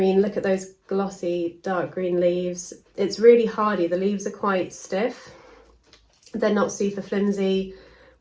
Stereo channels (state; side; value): identical; both; correlation 1.00